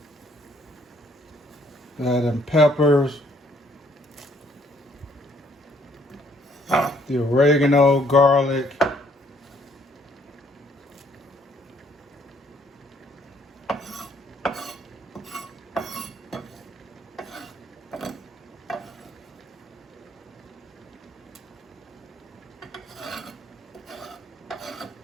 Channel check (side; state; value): both; normal; correlation 0.66